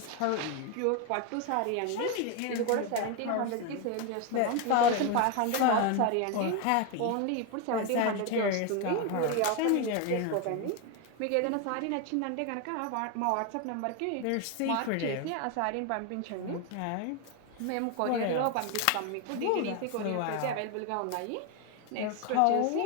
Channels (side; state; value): both; different; correlation 0.01